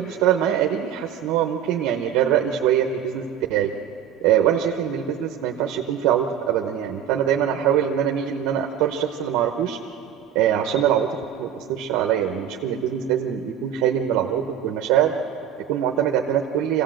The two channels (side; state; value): left; quieter; 9.3 dB